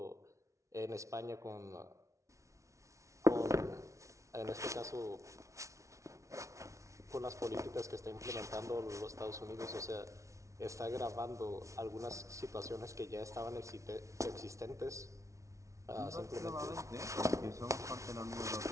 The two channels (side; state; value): left; late; 0.15 ms